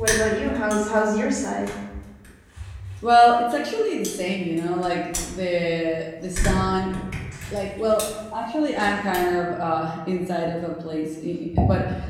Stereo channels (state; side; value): identical; both; correlation 1.00